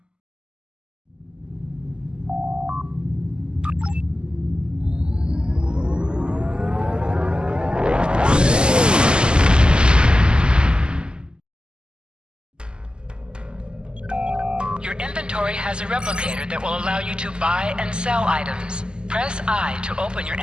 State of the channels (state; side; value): late; left; 0.048 ms